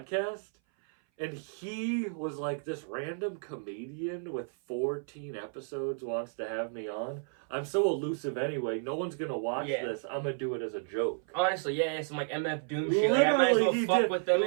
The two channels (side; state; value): left; silent; 56 dB below the other